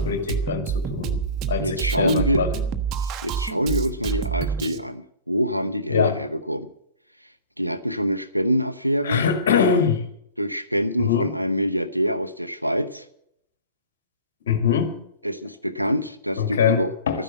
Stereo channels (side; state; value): both; inverted; correlation -0.44